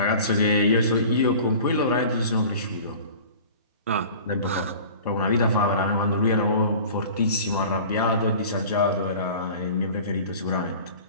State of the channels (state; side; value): inverted; both; correlation -0.42